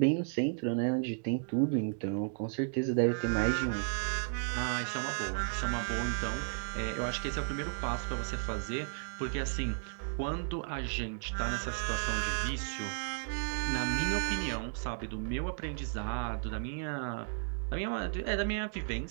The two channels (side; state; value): left; silent; digital silence